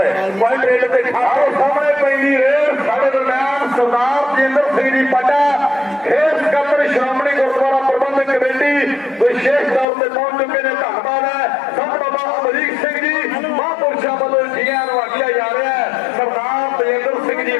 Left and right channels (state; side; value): drops out; right; at 9.9 s